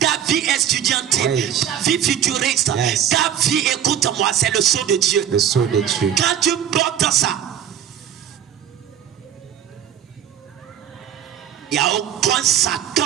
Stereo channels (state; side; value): quieter; left; 9.6 dB